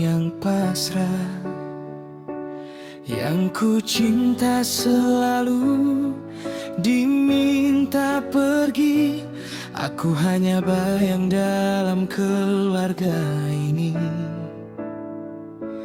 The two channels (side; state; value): both; identical; correlation 1.00